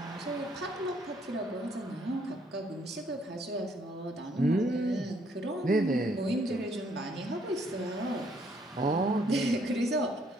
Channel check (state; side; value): normal; both; correlation 0.67